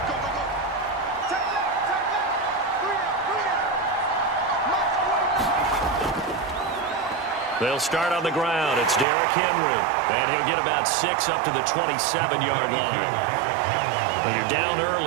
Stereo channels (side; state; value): left; drops out; at 9.1 s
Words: They'll start on the ground. It's Derrick Henry. And he'll get about 6 up to the 27-yard line. When you're down